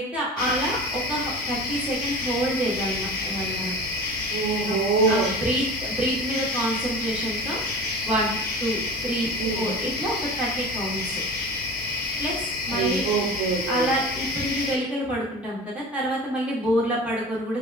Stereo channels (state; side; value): normal; both; correlation 0.35